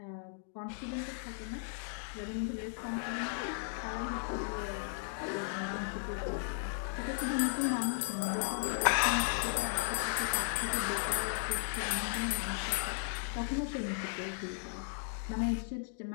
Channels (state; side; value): silent; right; digital silence